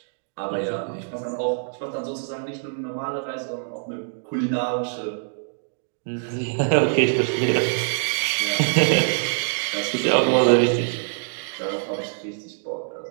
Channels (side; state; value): left; silent; digital silence